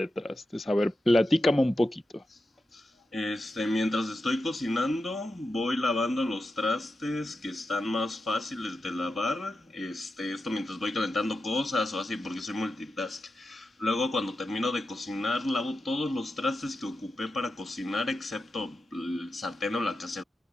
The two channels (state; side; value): normal; both; correlation 0.90